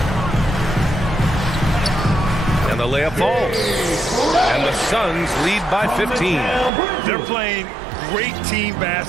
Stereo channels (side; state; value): left; drops out; at 6.7 s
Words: And the layup falls. And the Suns lead by 15. They're playing great team